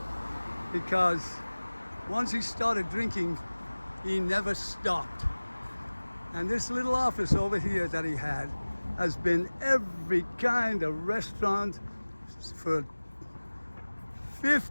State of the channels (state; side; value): inverted; both; correlation -1.00